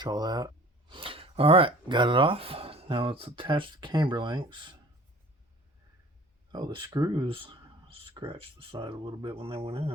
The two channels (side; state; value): both; normal; correlation 0.47